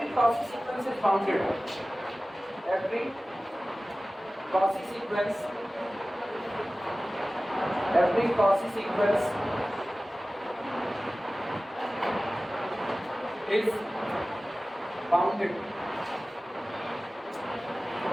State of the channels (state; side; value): normal; both; correlation 0.97